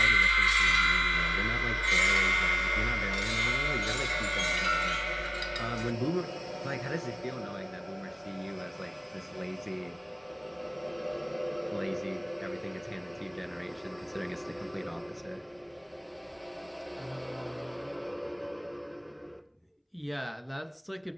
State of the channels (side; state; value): both; identical; correlation 1.00